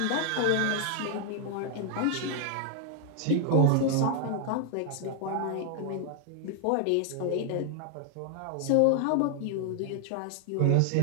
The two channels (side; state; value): both; different; correlation 0.00